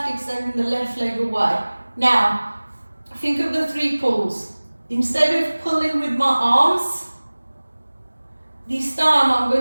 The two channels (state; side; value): inverted; both; correlation -1.00